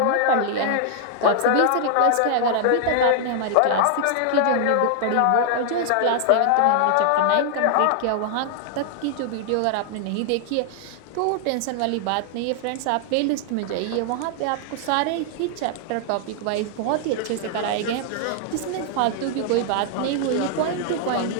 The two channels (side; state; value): both; different; correlation 0.00